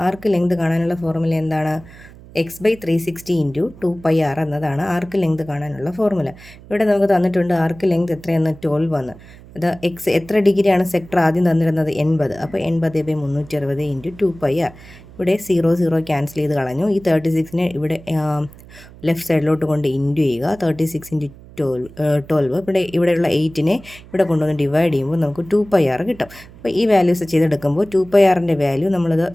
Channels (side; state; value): right; noise; hum, 20 dB below the sound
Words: എന്താണ്? x/360 × 2πr എന്നതാണ് ആർക്ക് ലെങ്ത് കാണാനുള്ള ഫോർമുല. ഇവിടെ നമുക്ക് തന്നിട്ടുണ്ട് ആർക്ക് ലെങ്ത് എത്രയെന്ന് 12 എന്ന്. അത് എത്ര ഡിഗ്രിയാണ് സെക്ടർ ആദ്യം തന്നിരുന്നത്? 80. അപ്പോൾ 80/360 × 2πr. ഇവിടെ 0 ക്യാൻസൽ ചെയ്ത് കളഞ്ഞു. ഈ 36നെ ഇവിടെ ലെഫ്റ്റ് സൈഡിലോട്ട് കൊണ്ട് ഇൻറ്റു ചെയ്യുക. 36 × 12. ഇവിടെയുള്ള 8നെ ഇവിടെ കൊണ്ടുവന്ന് ഡിവൈഡ് ചെയ്യുമ്പോൾ നമുക്ക് 2πr കിട്ടും. അപ്പോൾ ഈ വാല്യൂസ് ചെയ്തെടുക്കുമ്പോൾ 2πrൻ്റെ വാല്യൂ നമ്മളത്